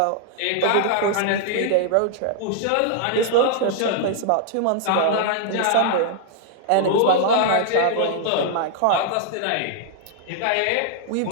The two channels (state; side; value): different; both; correlation 0.00